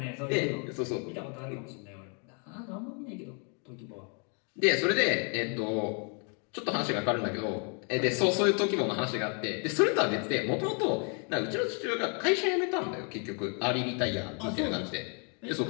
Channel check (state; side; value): quieter; right; 38.0 dB